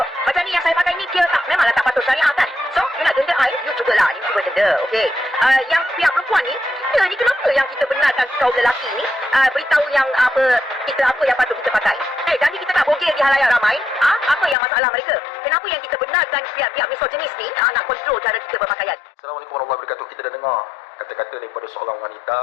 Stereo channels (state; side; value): drops out; right; at 14.6 s